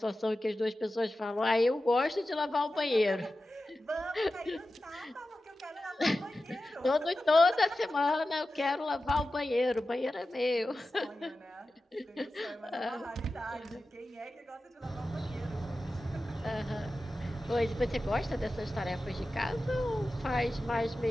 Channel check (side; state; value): both; normal; correlation 0.94